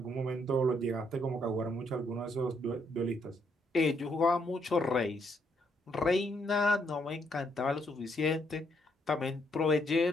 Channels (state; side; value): normal; both; correlation 0.73